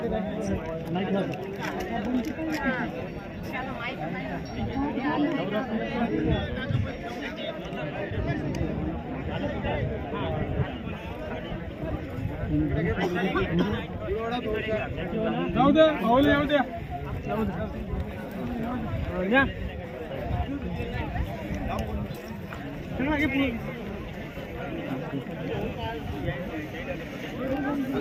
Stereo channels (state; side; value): identical; both; correlation 1.00